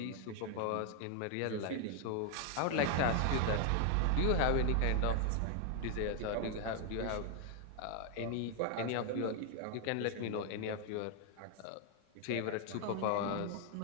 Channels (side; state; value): both; different; correlation 0.00